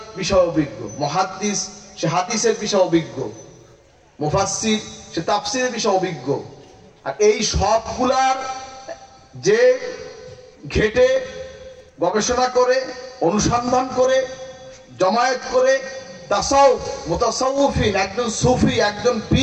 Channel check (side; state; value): both; identical; correlation 1.00